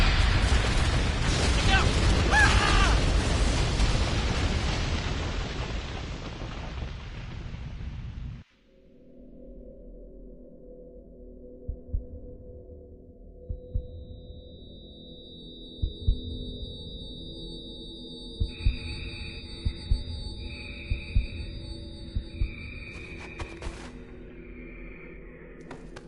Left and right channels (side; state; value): both; identical; correlation 1.00